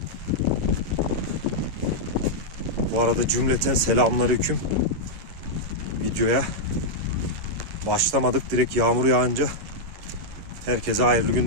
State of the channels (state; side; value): late; left; 11 ms